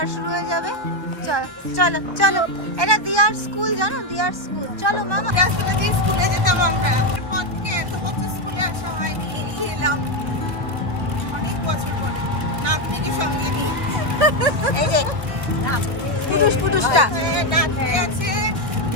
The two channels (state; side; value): late; left; 1.7 ms